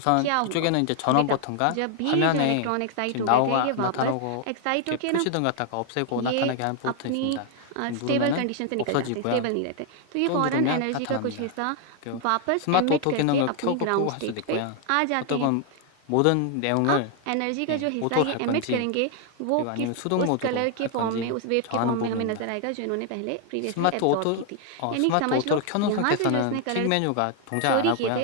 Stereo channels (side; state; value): both; different; correlation 0.00